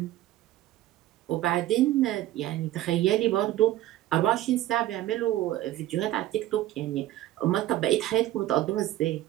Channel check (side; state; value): left; quieter; 14.3 dB